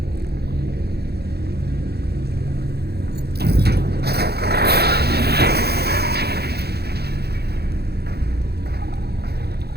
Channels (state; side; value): late; left; 0.47 ms